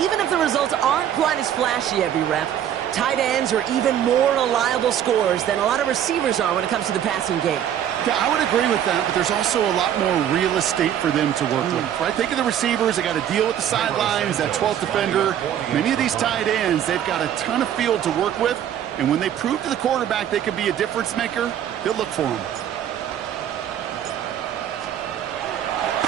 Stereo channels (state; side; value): quieter; left; 10.2 dB